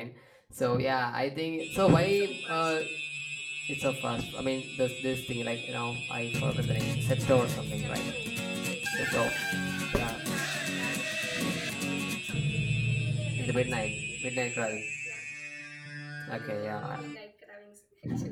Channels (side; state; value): both; identical; correlation 1.00